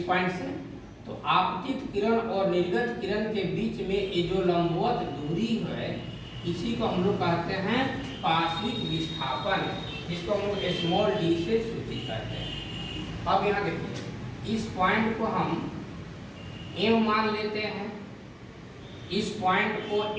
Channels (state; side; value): identical; both; correlation 1.00